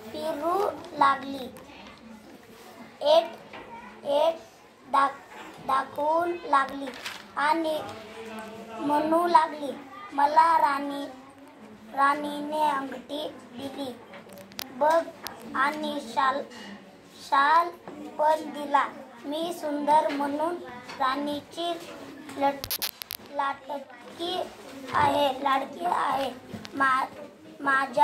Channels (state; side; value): identical; both; correlation 1.00